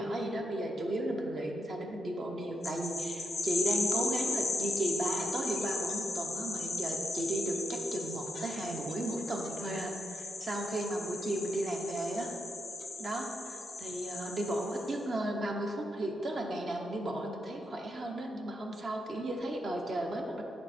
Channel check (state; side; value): normal; both; correlation 0.83